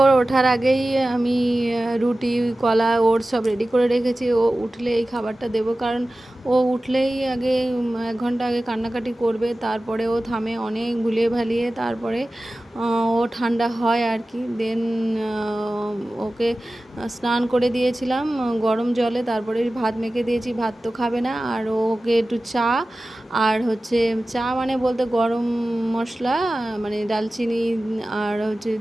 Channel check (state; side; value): normal; both; correlation 0.96